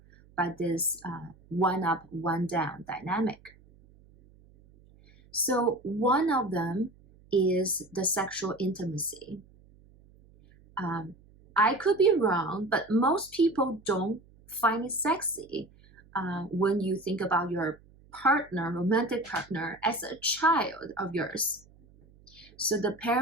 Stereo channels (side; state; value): right; noise; hum, 27 dB below the sound